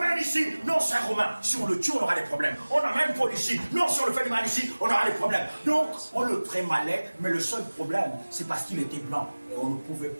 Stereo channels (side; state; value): both; inverted; correlation -1.00